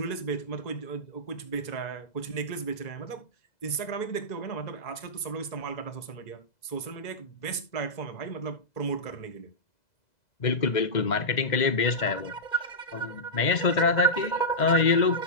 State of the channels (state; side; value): late; right; 2.0 ms